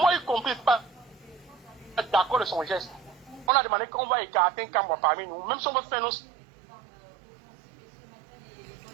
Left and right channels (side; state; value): left; drops out; at 3.5 s